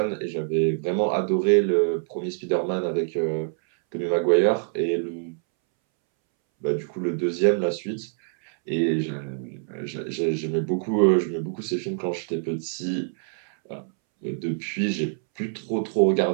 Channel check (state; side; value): silent; left; 62 dB below the other